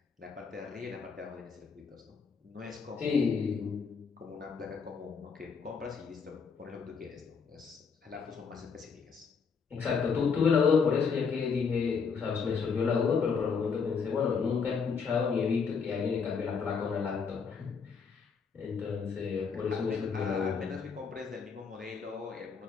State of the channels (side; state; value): right; quieter; 5.7 dB